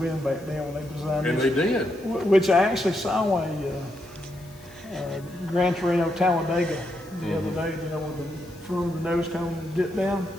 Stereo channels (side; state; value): left; noise; hiss, 25 dB below the sound